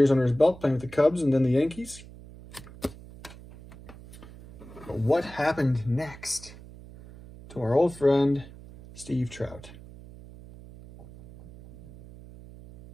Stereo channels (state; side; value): noise; right; hum, 18 dB below the sound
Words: under his belt playing with the Cubs and then the Yankees. But what happened next to our old friend, Steve Trout?